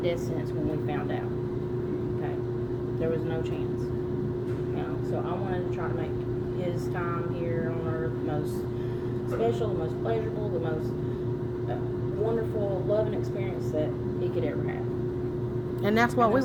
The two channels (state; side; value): identical; both; correlation 1.00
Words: sentence when we found out. Okay. There was no chance. So I wanted to try to make his time here on earth the most special, the most pleasurable, the most wonderful, loving experience that he could ever have. And that's what And we the